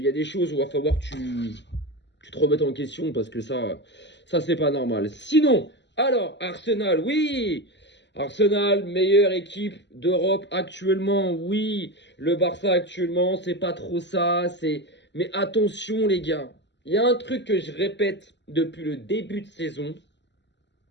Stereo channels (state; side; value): late; right; 0.51 ms